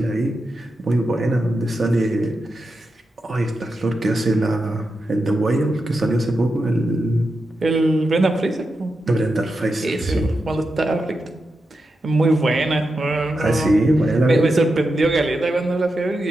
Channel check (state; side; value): normal; both; correlation 0.88